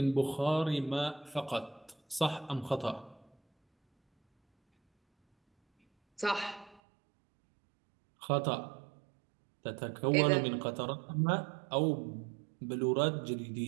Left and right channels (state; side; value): drops out; left; at 6.8 s